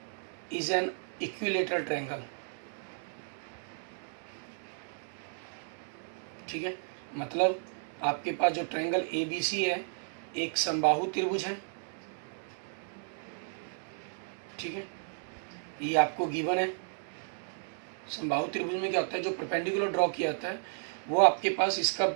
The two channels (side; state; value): left; silent; digital silence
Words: is an equilateral triangle, ठीक है। मतलब आपके पास जो ट्रायंगल ABC है एक समबाहु त्रिभुज है, ठीक है, ये आपको गिवन है। समबाहु त्रिभुज में क्या होता है, जो परपेंडिकुलर ड्रॉ किया जाता है वो आपके पास इसका